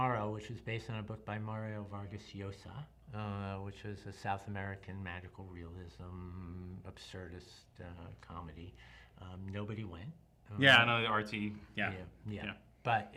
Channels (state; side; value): identical; both; correlation 1.00